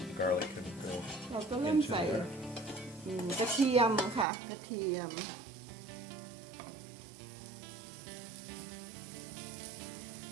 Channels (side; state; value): left; drops out; at 4.2 s